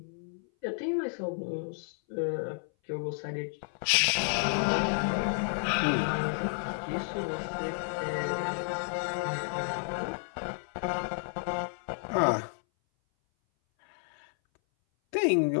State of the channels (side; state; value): right; silent; 57 dB below the other